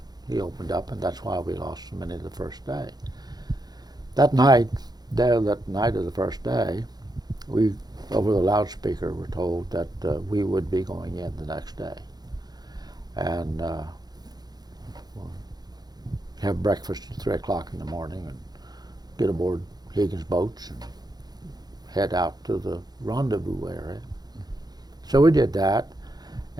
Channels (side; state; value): left; late; 0.19 ms